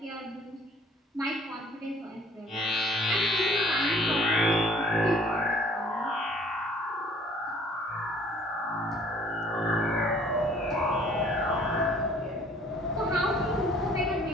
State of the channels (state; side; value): normal; both; correlation 0.56